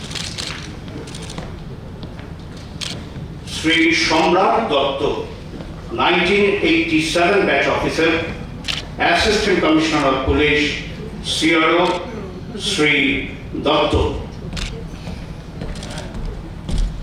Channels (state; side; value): identical; both; correlation 1.00